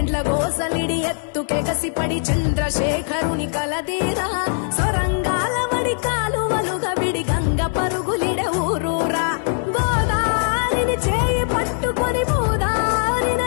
గోసలిడి ఎత్తుకెగసిపడి చంద్రశేఖరుని కలదీరా సొరంగాల వడి కాలువలుగా విడి గంగ పరు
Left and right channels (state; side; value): silent; right; 56 dB below the other